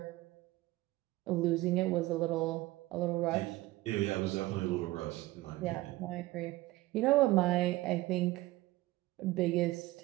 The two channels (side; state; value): left; quieter; 18.5 dB